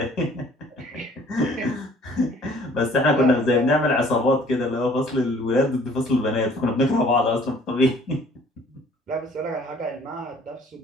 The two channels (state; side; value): normal; both; correlation 0.55